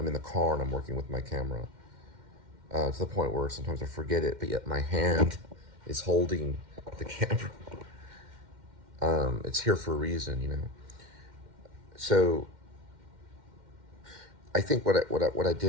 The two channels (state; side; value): late; left; 2.1 ms